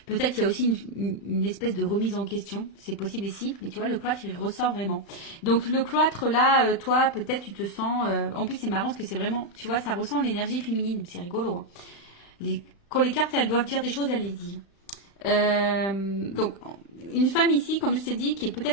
Peut-être il y a aussi une espèce de remise en question. C'est possible ici. Mais tu vois, le cloître, il ressort vraiment. Donc, le cloître là, toi, peut-être tu te sens... En plus, c'est marrant parce que c'est vraiment... Tu vois, ça ressent l'énergie féminine. C'est rigolo. Hein. Quand les cartes, elles doivent dire des choses, elles les disent. Donc, une femme ici, comme je t'ai dit, qui est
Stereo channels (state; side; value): late; right; 35 ms